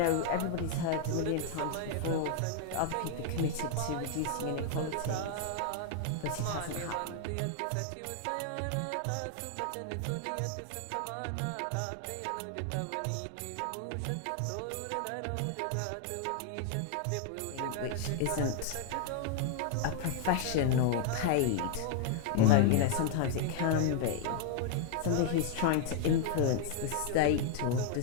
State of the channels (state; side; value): different; both; correlation 0.00